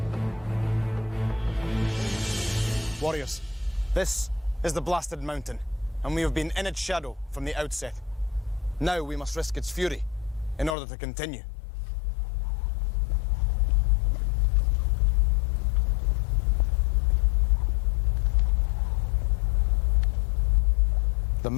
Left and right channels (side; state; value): right; drops out; at 10.8 s